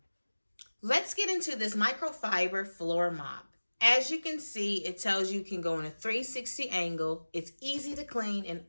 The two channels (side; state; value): both; inverted; correlation -1.00